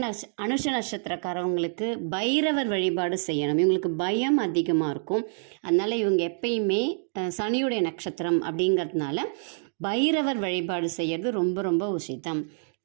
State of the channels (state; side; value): silent; left; digital silence